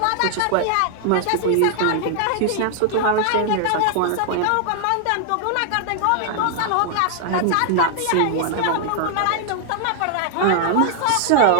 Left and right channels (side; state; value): both; different; correlation 0.00